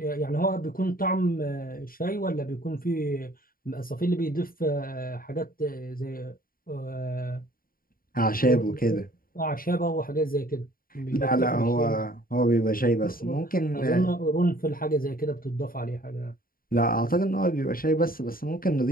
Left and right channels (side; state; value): right; late; 0.42 ms